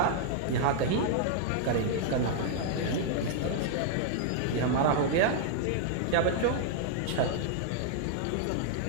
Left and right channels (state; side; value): different; both; correlation -0.01